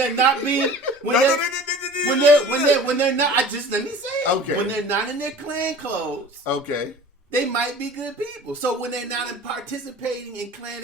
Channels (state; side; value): normal; both; correlation 0.42